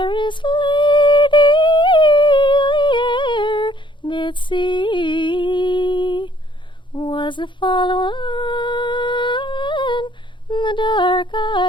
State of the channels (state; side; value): late; right; 0.23 ms